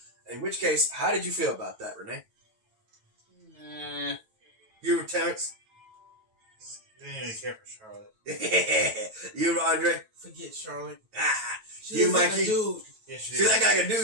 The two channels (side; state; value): left; late; 9.1 ms